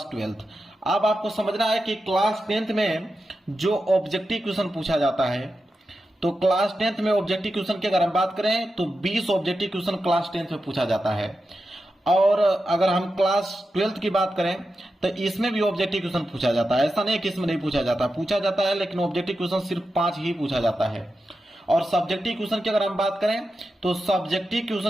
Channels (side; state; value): both; normal; correlation 0.90